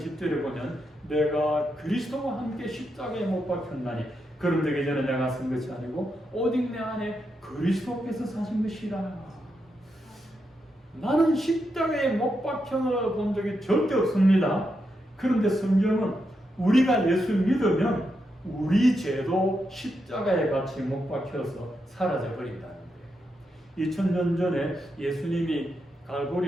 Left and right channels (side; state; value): both; normal; correlation 0.84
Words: 보면 내가 그리스도와 함께 십자가에 못 박혔나니 그럼 되기 전에 내가 쓴 것이 아니고 오직 내 안에 그리스도께서 사신 것이라. 나는 십자가에 못 박혀 본 적이 절대 없습니다. 그런데 성경은 우리가 예수 믿으면 우리 죄도 십자가에 같이 못 박혀서 사라져 버린다는 거예요. 2000년 전에 예수님이